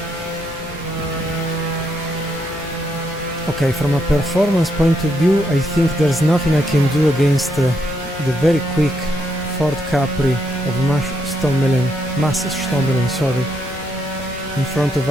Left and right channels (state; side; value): normal; both; correlation 0.77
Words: Okay, from a performance point of view, I think there's nothing I can do against the very quick Ford Capri of Massenstommelen, sorry, in front of